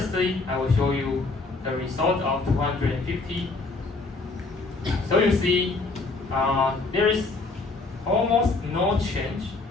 I will show you the result of 250. So you see, there is almost no change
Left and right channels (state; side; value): quieter; right; 3.6 dB